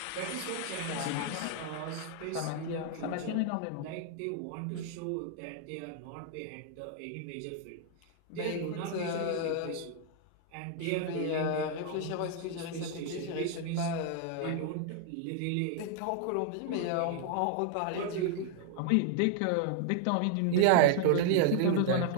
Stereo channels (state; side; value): different; both; correlation 0.00